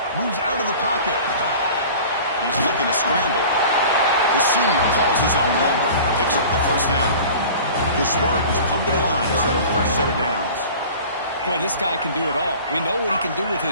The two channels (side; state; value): both; inverted; correlation -0.42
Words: Moves out of the pocket. He's looking to scramble. The senior calls his own number. Picks up the first down. The Spartans come to the line to set a fresh set of downs. Boy, this guy can do it all. We know what he can do with